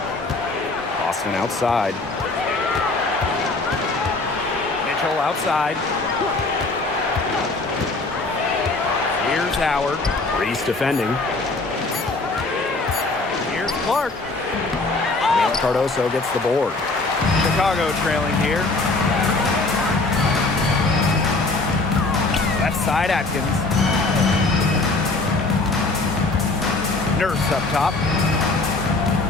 Boston outside. Mitchell outside. Here's Howard. Reese defending. Here's Clark. Cardoso gets the board. Chicago trailing here. Left side Atkins. Nurse up top.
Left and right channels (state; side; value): quieter; right; 3.4 dB